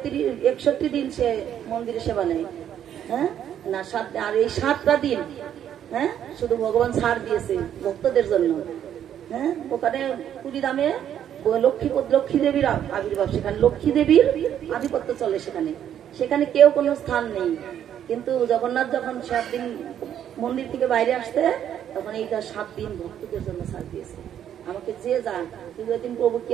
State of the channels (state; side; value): quieter; left; 9.9 dB